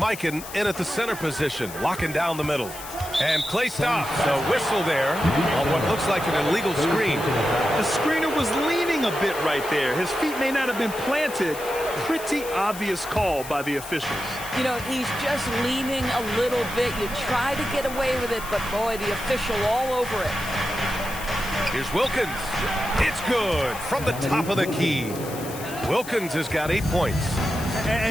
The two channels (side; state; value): left; noise; hiss, 13 dB below the sound